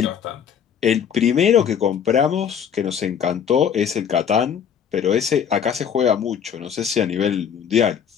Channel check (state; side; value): quieter; right; 8.0 dB